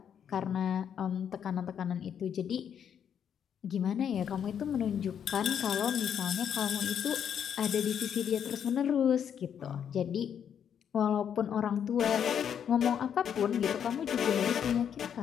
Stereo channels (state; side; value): quieter; right; 8.4 dB